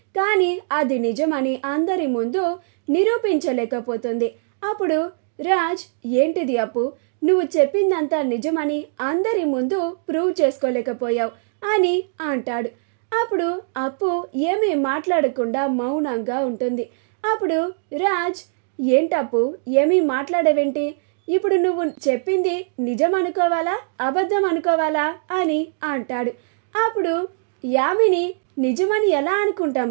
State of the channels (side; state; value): left; silent; digital silence